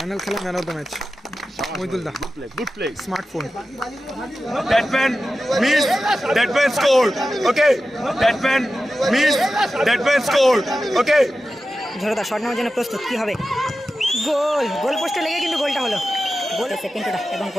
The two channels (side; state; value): both; normal; correlation 0.93